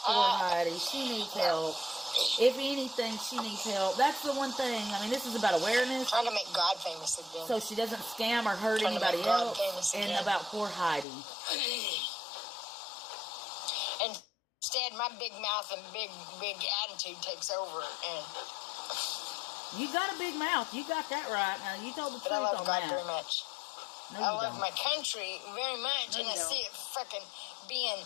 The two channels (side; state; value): right; drops out; at 11.1 s